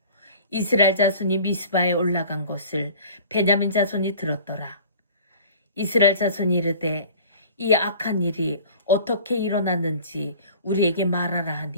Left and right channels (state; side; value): inverted; both; correlation -0.45